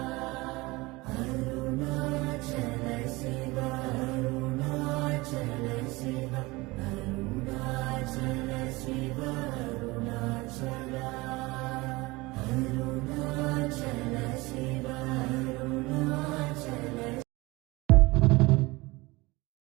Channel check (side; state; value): left; quieter; 22.4 dB